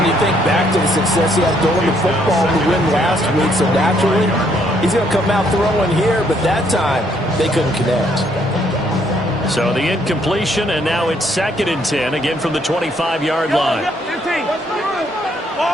you think back to the success he had throwing the football to win last week, so naturally he's going to come out throwing here, but that time they couldn't connect. So the incompletion, and now it's 2nd and 10, again from the 25-yard line.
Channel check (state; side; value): normal; both; correlation 0.69